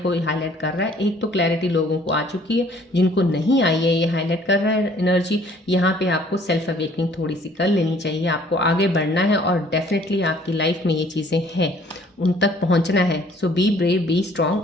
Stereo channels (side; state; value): both; normal; correlation 0.57